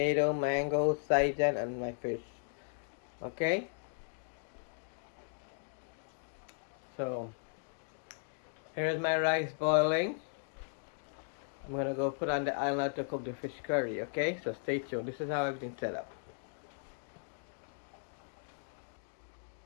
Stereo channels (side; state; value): right; silent; 53 dB below the other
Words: mango, saijan, and my fish. Okay? So, here's my rice boiling. I'm gonna go put on the island to cook the fish curry, okay? So stay tuned. This is how everything's set up.